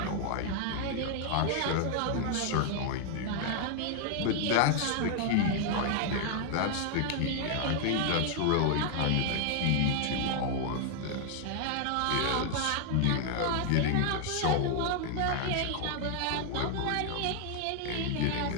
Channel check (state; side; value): different; both; correlation 0.00